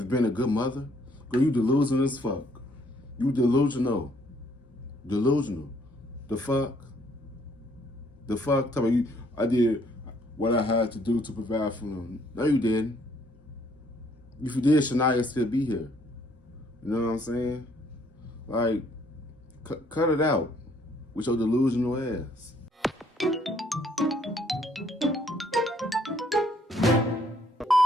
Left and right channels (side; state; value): both; normal; correlation 0.65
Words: being a good mother. Girl, you delusional as fuck. You delusional. Delusional. The fuck? The fuck? Tell me, I did what I had to do to provide for them. No, you didn't. If you did, Shaniya still be here. You know what I'm saying? Like, cut it out with your delusional ass.